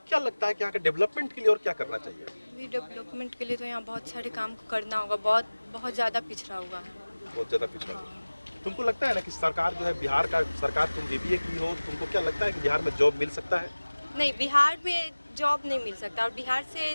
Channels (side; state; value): both; inverted; correlation -1.00